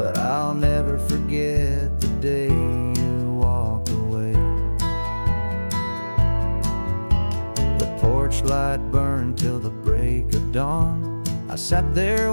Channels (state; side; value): inverted; both; correlation -1.00